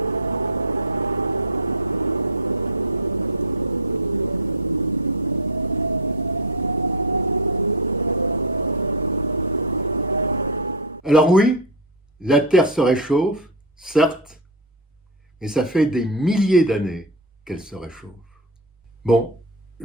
Alors oui, la Terre se réchauffe, certes, mais ça fait des milliers d'années qu'elle se réchauffe. Bon,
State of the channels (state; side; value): normal; both; correlation 0.04